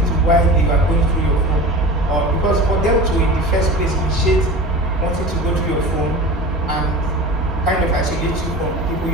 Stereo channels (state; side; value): normal; both; correlation 0.34